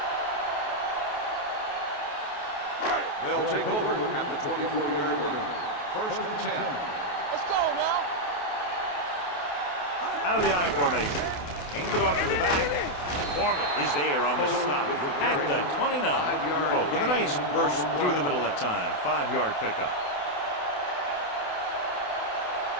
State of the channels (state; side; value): late; right; 28 ms